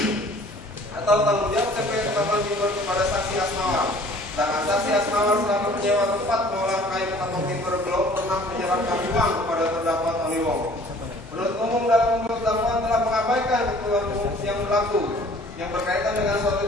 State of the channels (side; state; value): both; normal; correlation 0.52